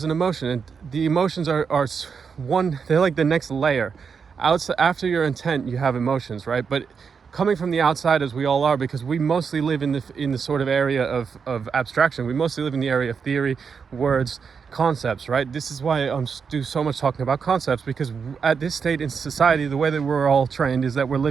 an emotion, and the emotions are they're like the next layer. After your intent, you have emotions, right? But coming from the outside, as we all are, because we mostly live in the sort of area of abstraction. We mostly live in the area of theory, words, concepts, right? This is why I do so much talking about concepts, because at this state in society, the way that we're all trained is that we're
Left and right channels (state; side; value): quieter; left; 6.0 dB